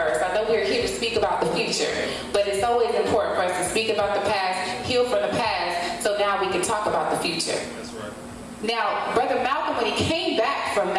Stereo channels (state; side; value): identical; both; correlation 1.00